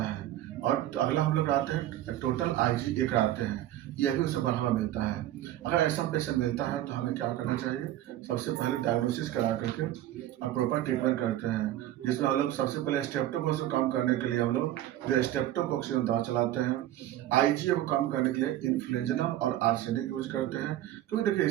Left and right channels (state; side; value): quieter; left; 13.4 dB